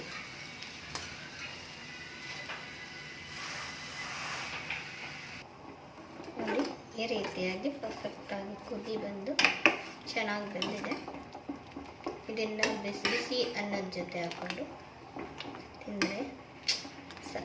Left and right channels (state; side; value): identical; both; correlation 1.00